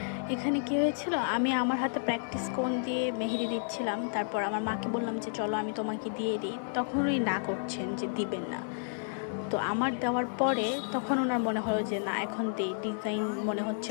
এখানে কি হয়েছিল, আমি আমার হাতে প্র্যাকটিস কোন দিয়ে মেহেদি দিচ্ছিলাম। তারপর আমার মাকে বললাম যে চলো আমি তোমাকে দিয়ে দিই, তখন উনি না করছেন যে দিবেন না। তো আমার দেওয়ার পরে তখন ওনার মনে হলো যে না, এখন দিই, ডিজাইন মনে হচ্ছে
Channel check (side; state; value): right; silent; 57 dB below the other